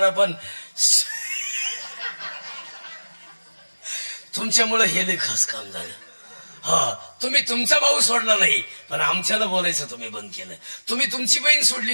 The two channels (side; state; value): both; inverted; correlation -1.00